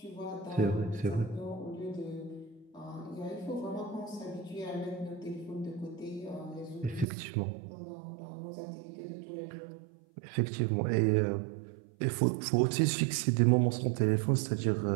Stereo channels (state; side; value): drops out; left; at 7.1 s